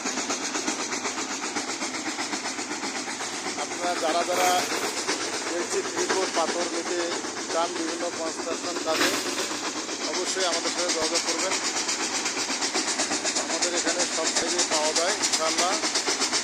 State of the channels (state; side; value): identical; both; correlation 1.00